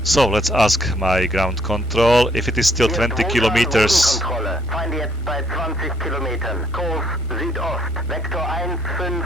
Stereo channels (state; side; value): normal; both; correlation 0.67